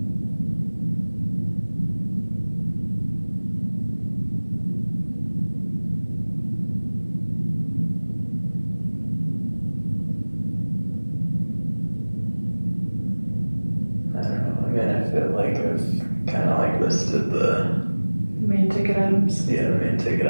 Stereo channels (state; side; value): inverted; both; correlation -1.00